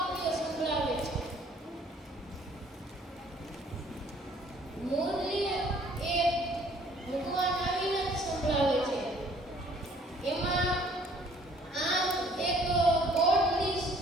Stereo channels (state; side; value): normal; both; correlation 0.58